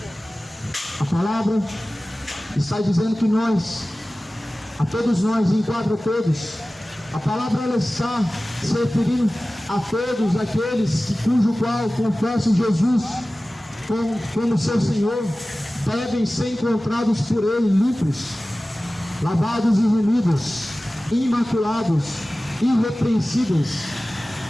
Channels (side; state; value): both; normal; correlation 0.97